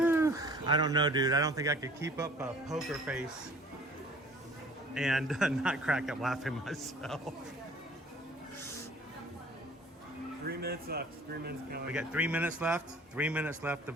I don't know, dude. I don't think I could keep up a poker face and not crack up laughing myself. 3 minutes left. 3 minutes counting. We got 3 minutes left. 3 minutes left to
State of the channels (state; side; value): normal; both; correlation 0.50